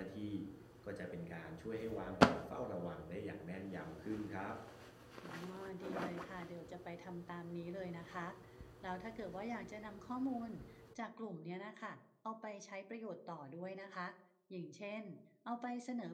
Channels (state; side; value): identical; both; correlation 1.00